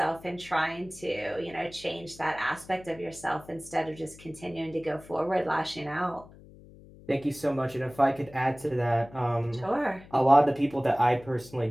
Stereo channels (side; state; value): left; noise; hum, 21 dB below the sound